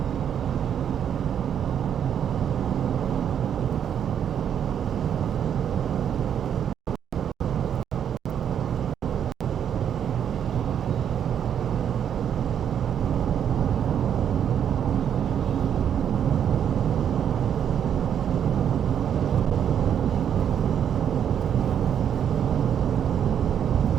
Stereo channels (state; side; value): quieter; left; 8.9 dB